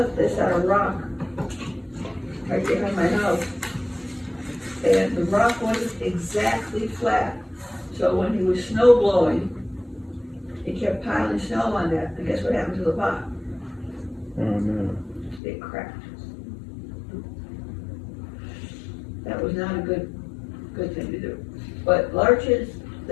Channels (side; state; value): right; drops out; at 15.4 s